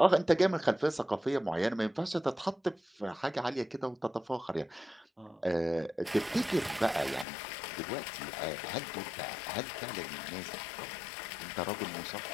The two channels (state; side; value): drops out; right; at 7.2 s